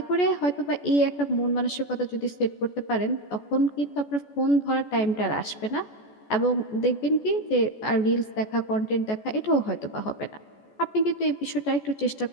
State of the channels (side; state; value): right; late; 14 ms